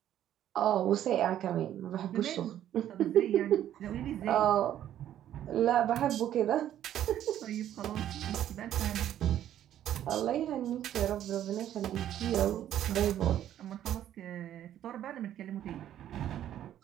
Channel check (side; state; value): left; quieter; 11.4 dB